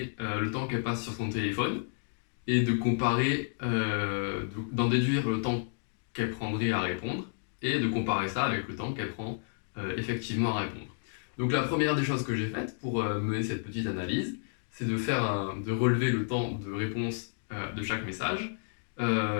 le temps qu'elle passe sur son téléphone et de comparer, d'en déduire le temps qu'elle prendrait à répondre et de comparer ça avec le temps qu'elle prend effectivement à répondre. Donc la première des choses que j'ai faites pour mener cette petite analyse, c'est de relever le temps de réponse de chaque message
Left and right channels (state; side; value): silent; right; digital silence